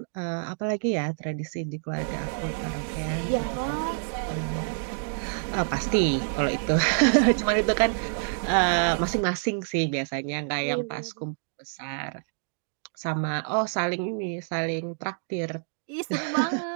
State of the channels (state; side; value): silent; left; digital silence